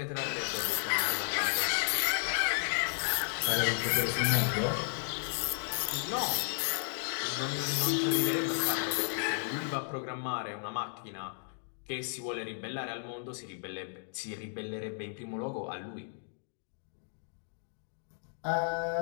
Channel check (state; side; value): silent; right; digital silence